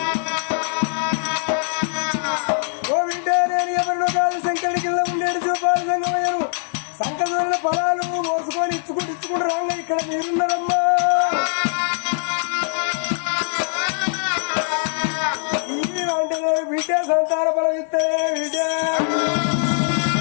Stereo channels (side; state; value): right; silent; digital silence